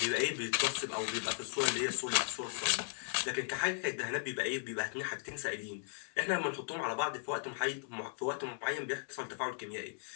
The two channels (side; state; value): right; silent; digital silence